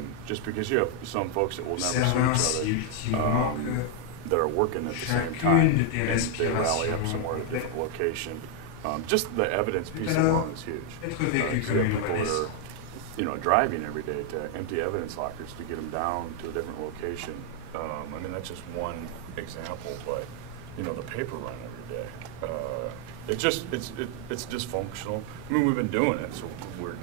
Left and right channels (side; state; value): both; different; correlation 0.01